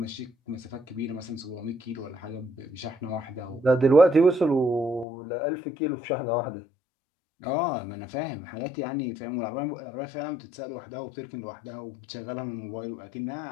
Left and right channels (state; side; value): drops out; right; at 5.1 s